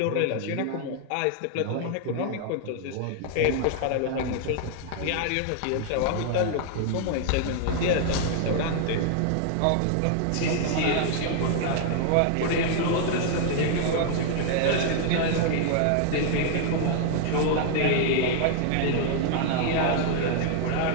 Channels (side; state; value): both; different; correlation 0.00